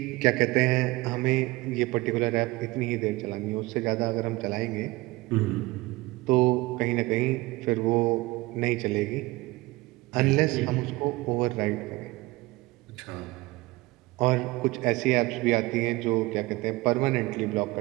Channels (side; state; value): left; quieter; 21.3 dB